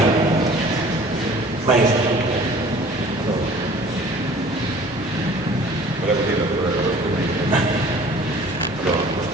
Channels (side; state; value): both; normal; correlation 0.49